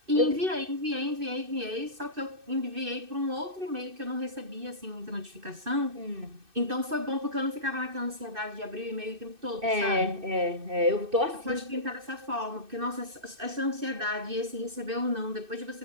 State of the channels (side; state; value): left; late; 2.6 ms